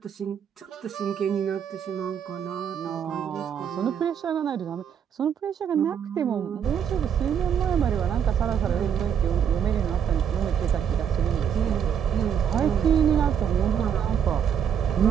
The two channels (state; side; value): quieter; left; 8.2 dB